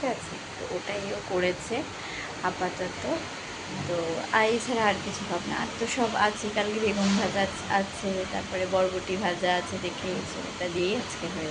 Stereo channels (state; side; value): identical; both; correlation 1.00